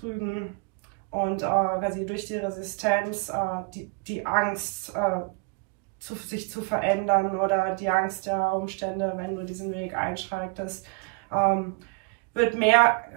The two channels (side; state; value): left; quieter; 33.0 dB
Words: und quasi durch die Resistenz die Angst sich zu verändern oder die Angst der Umstände, wenn du diesen Weg einschreitest, wird mehr